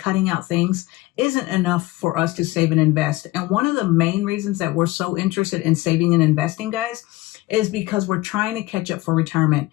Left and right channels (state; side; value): quieter; right; 19.2 dB